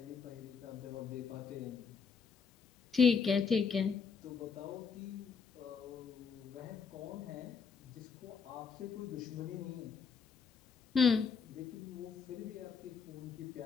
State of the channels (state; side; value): quieter; right; 5.9 dB